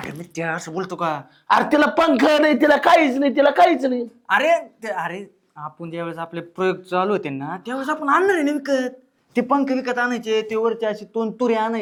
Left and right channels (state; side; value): identical; both; correlation 1.00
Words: आहेत त्या असं बोलतो का? अरे तिला पंख नाही, तिला काहीच नाही, तिला काहीच नाही. अरे आपण ज्यावेळेस आपले प्रयोग चालू होते ना त्यावेळेस आपण आणणार आहे ना विकत. ते पंख विकत आणायचे, ते वरचे असे तुरे